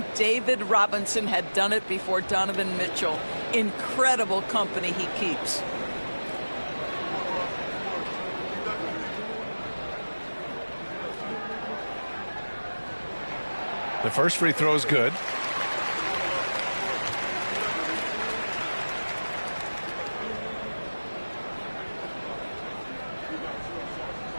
David Robinson had done it before Donovan Mitchell. Incredible company he keeps. The first free throw is good.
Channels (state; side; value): inverted; both; correlation -1.00